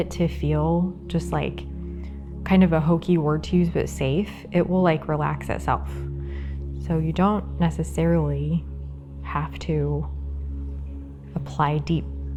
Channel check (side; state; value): both; identical; correlation 1.00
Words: to feel just like kind of a hokey word to use but safe, it will like relax itself. So you don't necessarily have to apply deep